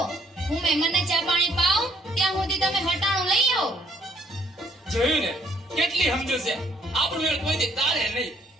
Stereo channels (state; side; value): normal; both; correlation 0.65